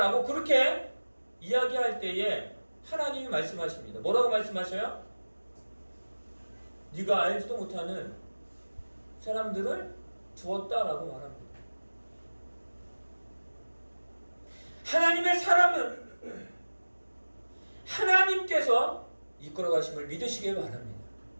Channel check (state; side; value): inverted; both; correlation -1.00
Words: 그렇게 이야기할 때에 하나님이 말씀하십니다. 뭐라고 말씀하셔요? 네가 알지도 못하는 사람들을 두었다라고 말합니다. 하나님의 사람은 하나님께서 이끌어 가심을 믿으시길 바랍니다.